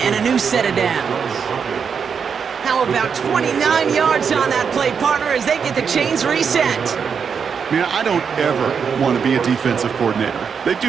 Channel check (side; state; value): left; quieter; 6.5 dB